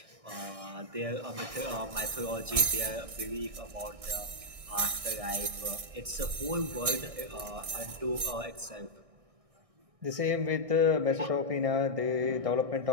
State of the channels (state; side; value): late; left; 1.6 ms